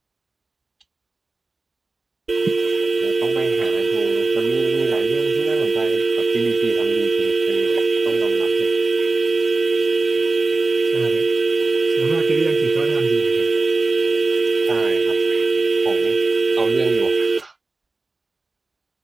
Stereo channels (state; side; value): quieter; left; 3.4 dB